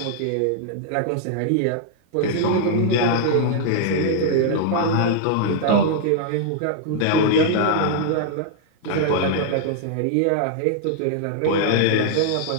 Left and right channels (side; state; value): both; different; correlation -0.01